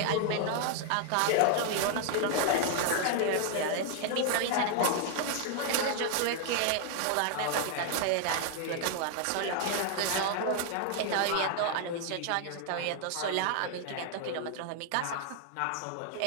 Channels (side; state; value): both; different; correlation 0.00